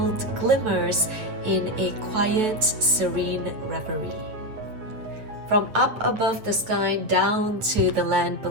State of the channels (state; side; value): late; left; 9.4 ms